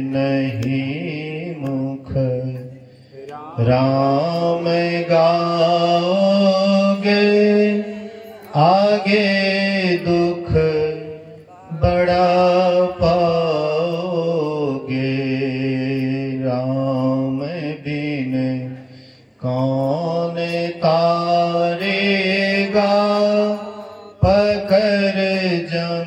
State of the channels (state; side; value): identical; both; correlation 1.00